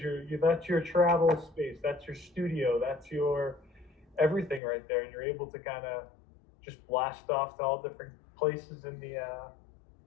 that's your travel space, that's your studio, that's your everything right there, and you're able to kind of just blast off to all different places in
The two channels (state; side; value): drops out; right; at 4.6 s